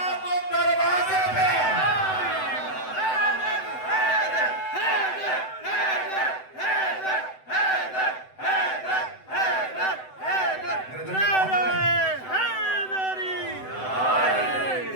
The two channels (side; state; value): right; late; 7.9 ms